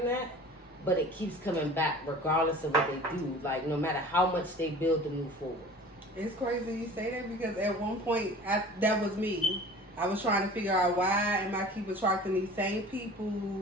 that, but it keeps coming back regardless of what they do. Like, no matter how much they build to move forward. It's crazy you say that, because at one point, that was me. I was trying to figure out why am I keep attracting these same people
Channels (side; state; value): both; normal; correlation 0.42